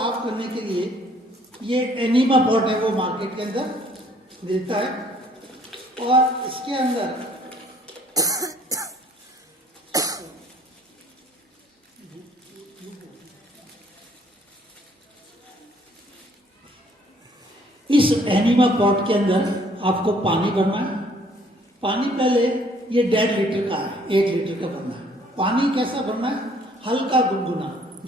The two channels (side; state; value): both; normal; correlation 0.61